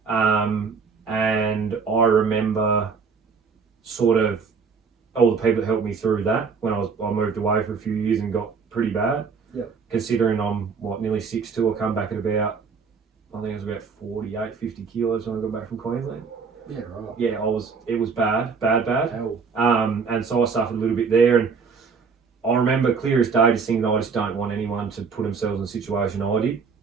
And I remember sort of all the people that helped me through that when I moved away for a few years and got pretty bad. Yep. Considering I'm, nearly 6'2", I come back at about, I think it was about 48, 50 kilos when I got back from Queensland. Yeah, right. Yeah, it was bad. Hell. And so I suffered a little bit there, and I remember clear as day just thinking I just don't want anyone to put themselves in a situation I did.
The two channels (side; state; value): left; quieter; 5.4 dB